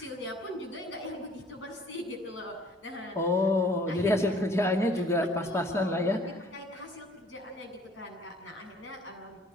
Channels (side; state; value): both; normal; correlation 0.55